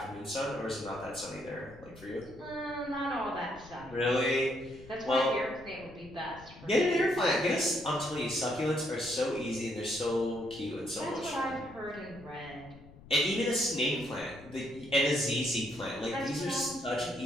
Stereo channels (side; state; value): left; noise; rumble, 20 dB below the sound